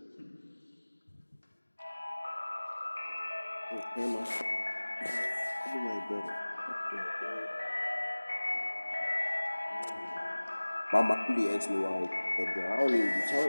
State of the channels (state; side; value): inverted; both; correlation -1.00